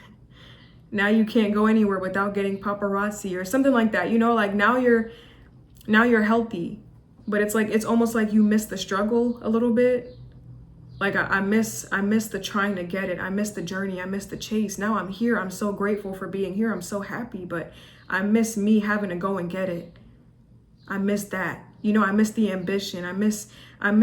Now you can't go anywhere without getting paparazzi or something like that. You know, like now you're healthy, but it's like, it's almost like you miss the struggle a little bit. Like I miss the trying to get it. I miss the journey. I miss the chase. Now I'm here. I'm so grateful for being here. I'm so happy, but I miss me having to go and get it. I miss that. You know, I miss the ambition. I miss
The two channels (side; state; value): both; identical; correlation 1.00